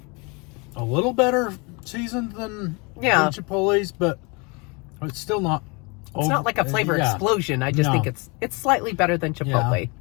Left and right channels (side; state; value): right; quieter; 29.6 dB